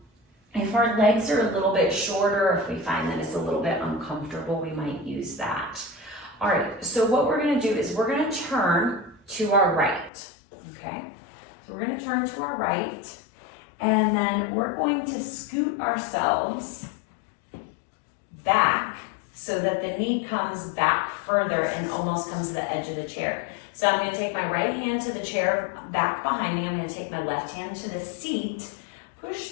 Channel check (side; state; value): right; drops out; at 10.1 s